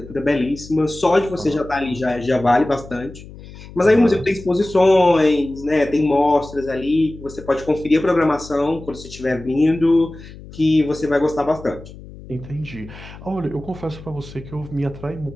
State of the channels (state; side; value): noise; left; hum, 17 dB below the sound